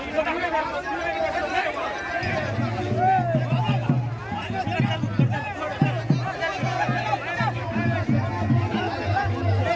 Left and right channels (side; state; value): both; identical; correlation 1.00